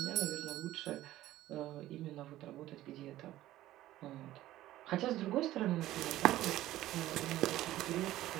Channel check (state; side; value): quieter; left; 14.9 dB